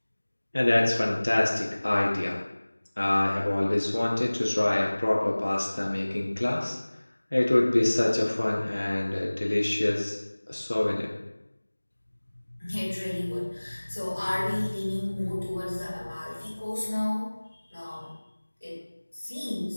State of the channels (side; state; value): both; inverted; correlation -1.00